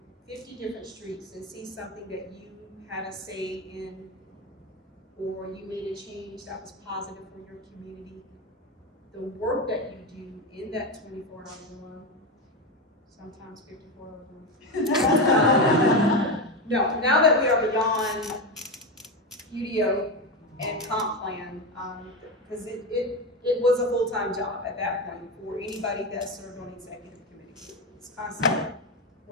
50 different streets and see something that you had a say in, or you made a change that was positive for your community. The work that you do in that 24 hour, sometimes 54 hours. No, now that we are beyond UDO and comp plan, because it was a full-time job at that point for anybody that served on executive committee. It's constant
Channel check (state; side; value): normal; both; correlation 0.15